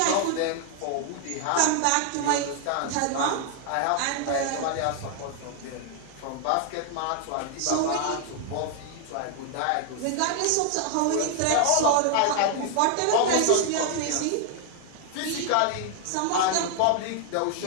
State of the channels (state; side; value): different; both; correlation 0.00